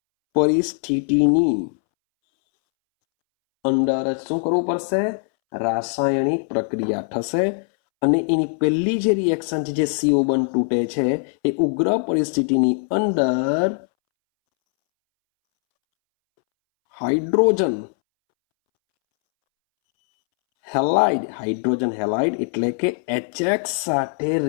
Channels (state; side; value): silent; right; 65 dB below the other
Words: પરિસ્થિતિની અંદર જ શું કરવું પડશે? રાસાયણિક પ્રક્રિયા થશે. અને એની પહેલી જે રિએક્શન છે, જે CO બંધ તૂટે છે, એ ઉગ્ર પરિસ્થિતિની અંદર હાઇડ્રોજન હેલાઇડ એટલે કે HX સાથે